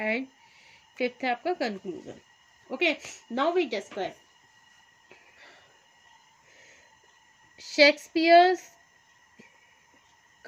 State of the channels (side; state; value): both; identical; correlation 1.00